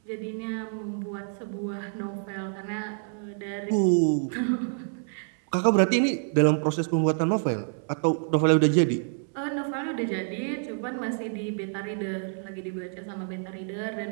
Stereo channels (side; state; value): left; silent; 60 dB below the other